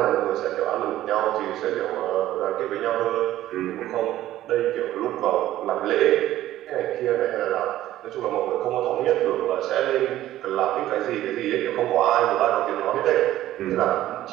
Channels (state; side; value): quieter; left; 14.0 dB